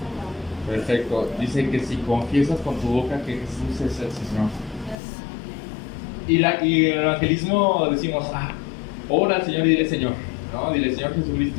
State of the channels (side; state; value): right; drops out; at 5.0 s